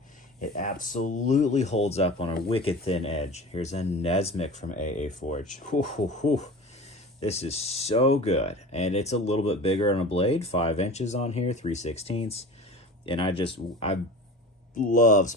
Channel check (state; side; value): normal; both; correlation 0.36